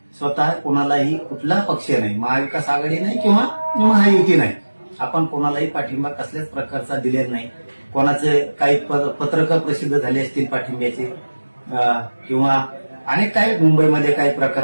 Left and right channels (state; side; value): inverted; both; correlation -1.00